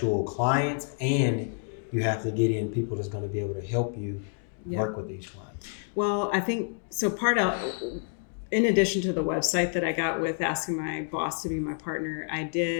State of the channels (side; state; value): right; silent; 59 dB below the other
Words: clients, and you have to get in people that's going to be able to help you work with these clients. Well, I think so. In addition to the website that I got with asking my boss to be my partner, I